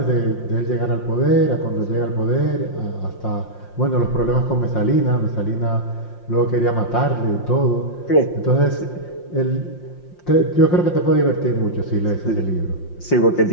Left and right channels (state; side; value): late; right; 5.7 ms